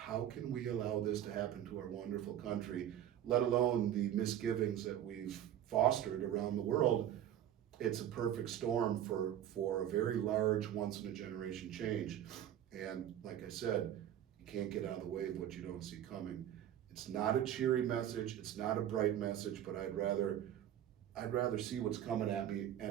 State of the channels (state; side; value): quieter; left; 11.0 dB